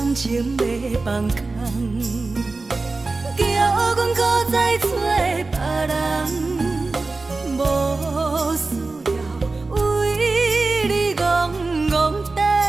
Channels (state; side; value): quieter; left; 3.6 dB